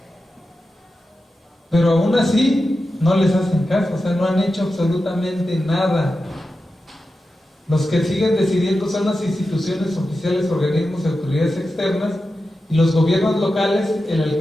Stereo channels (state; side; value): normal; both; correlation 0.91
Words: Pero aún así no les hacen caso, o sea, no han hecho absolutamente nada. Los que siguen decidiendo son las instituciones oficiales, organismos y autoridades externas, y los gobiernos locales. El